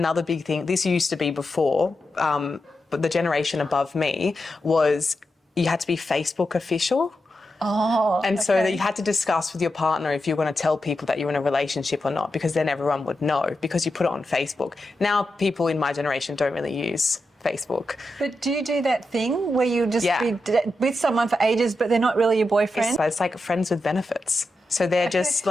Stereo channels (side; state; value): both; normal; correlation 0.88